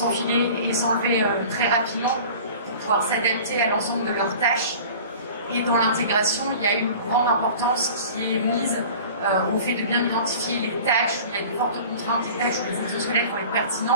et s'enlever très rapidement pour pouvoir s'adapter à l'ensemble de leurs tâches. Et dans l'intégration, il y a une grande importance qui est mise au fait de bien identifier les tâches où il y a de fortes contraintes, les tâches où les exosquelettes vont être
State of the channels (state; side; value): inverted; both; correlation -0.42